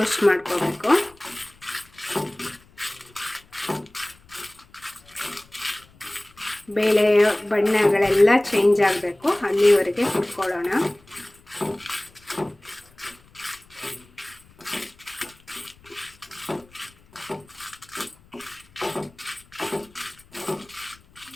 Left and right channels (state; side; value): noise; left; rumble, 28 dB below the sound